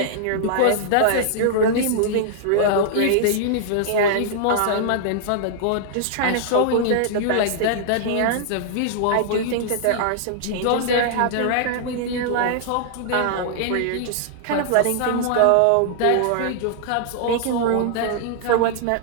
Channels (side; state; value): both; different; correlation -0.01